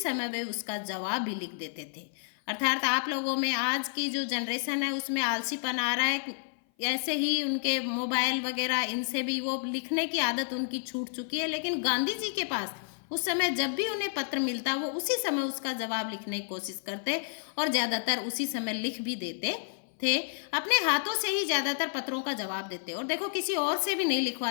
वे उसका जवाब भी लिख देते थे। अर्थात आप लोगों में आज की जो जनरेशन है उसमें आलसीपन आ रहा है, ऐसे ही उनके मोबाइल वगैरह इनसे भी वो लिखने की आदत उनकी छूट चुकी है। लेकिन गांधी जी के पास उस समय जब भी उन्हें पत्र मिलता वो उसी समय उसका जवाब लिखने की कोशिश करते और ज़्यादातर उसी समय लिख भी देते थे। अपने हाथों से ही ज़्यादातर पत्रों का जवाब देते और देखो, किसी और से भी नहीं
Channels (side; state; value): right; silent; 56 dB below the other